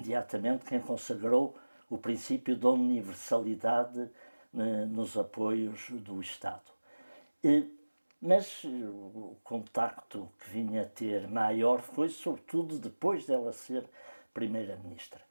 quem consagrou o princípio da universalidade nos apoios do Estado. Mas o contacto que vinha a ter maior foi sobretudo depois dela ser Primeira-Ministra.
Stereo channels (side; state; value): both; inverted; correlation -1.00